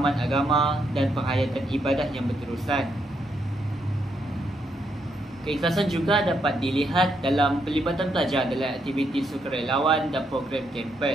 agama dan penghayatan ibadah yang berterusan. Keikhlasan juga dapat dilihat dalam pelibatan pelajar dalam aktiviti sukarelawan dan program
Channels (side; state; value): both; normal; correlation 0.77